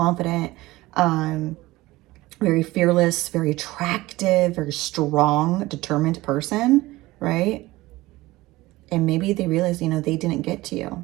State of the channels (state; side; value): quieter; left; 19.0 dB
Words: very fearless, very attractive, very strong, determined person, right? And maybe they realize, you know, they didn't get to